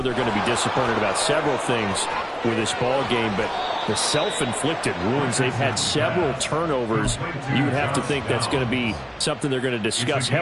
they're going to be disappointed about several things with this ball game, but the self-inflicted wounds, they've had several turnovers. You would have to think that's going to be something they're going to discuss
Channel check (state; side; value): identical; both; correlation 1.00